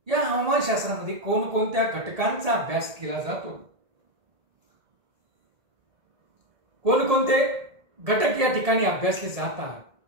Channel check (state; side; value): late; left; 1.7 ms